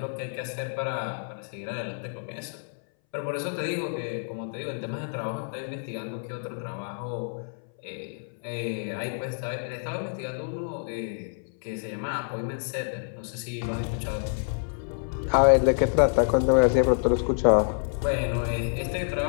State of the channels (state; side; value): silent; right; 59 dB below the other